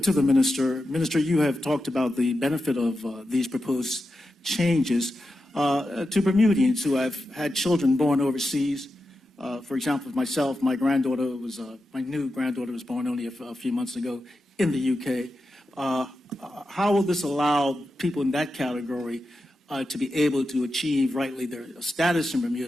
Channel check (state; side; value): normal; both; correlation 0.90